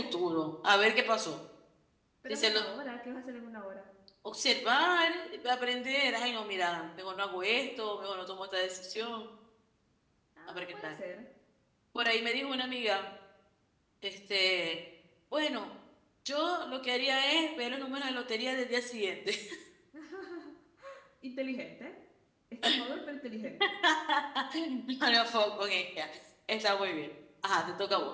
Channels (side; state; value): both; identical; correlation 1.00